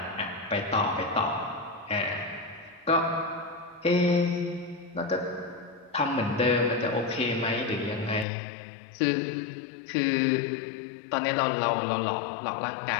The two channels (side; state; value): right; drops out; at 8.2 s